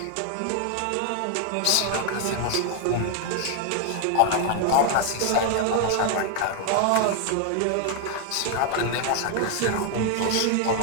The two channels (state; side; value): different; both; correlation 0.00